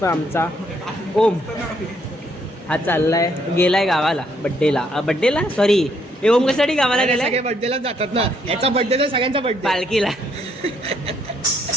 आमचा ओम. हा चाललाय, गेलाय गावाला बड्डेला सॉरी. हे ओम कशासाठी गावाला गेलाय? सगळे बर्थडेला जातात ना. याचा बर्थडे तर सगळ्यांचा बर्थडे. पालखीला.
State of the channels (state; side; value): normal; both; correlation 0.71